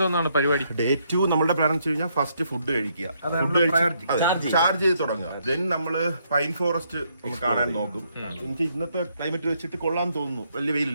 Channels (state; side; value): inverted; both; correlation -0.73